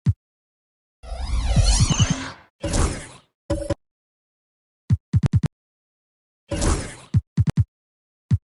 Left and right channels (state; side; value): identical; both; correlation 1.00